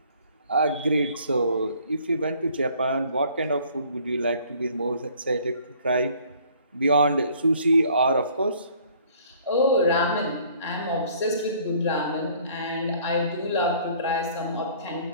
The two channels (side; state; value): both; inverted; correlation -0.57